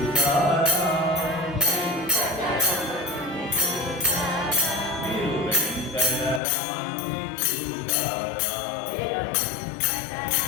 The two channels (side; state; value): right; drops out; at 6.4 s